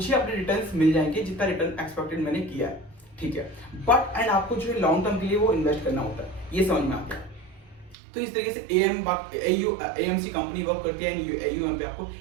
अपने रिटर्न्स मिल जाएंगे जितना रिटर्न एक्सपेक्टेड मैंने किया है, ठीक है। बट एंड आपको जो है लॉन्ग टर्म के लिए वो इन्वेस्ट करना होता है, ये समझ में आ गया। तो इस तरीके से एएमसी कंपनी वर्क करती है, एयूएम पे आपको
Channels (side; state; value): left; drops out; at 8.0 s